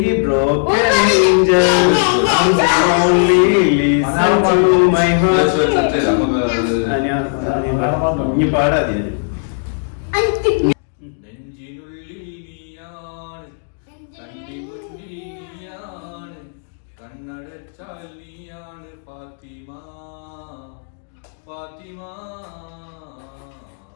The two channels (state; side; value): silent; right; digital silence